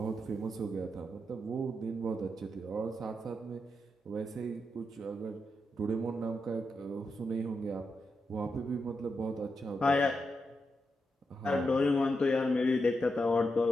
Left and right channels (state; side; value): normal; both; correlation 0.85